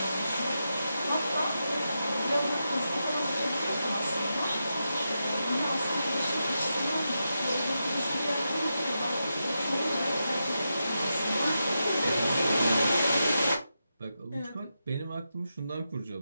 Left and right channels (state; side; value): inverted; both; correlation -0.87